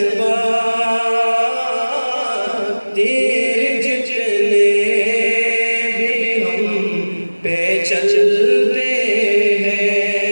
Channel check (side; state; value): both; inverted; correlation -1.00